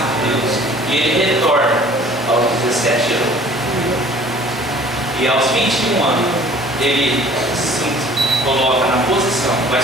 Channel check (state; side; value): normal; both; correlation 0.50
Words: Deus, e ele retorna aos 17 anos. E aos 21 anos, ele se coloca na posição, vai